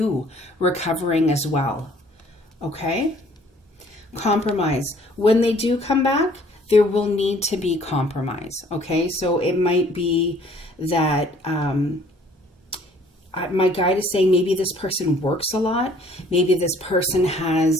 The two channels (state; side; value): normal; both; correlation 0.58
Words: recovering as well. Okay? Compromise. When they do come back, there will need to be compromise. Okay? So it might be that my guide is saying maybe this person works a lot. Maybe this person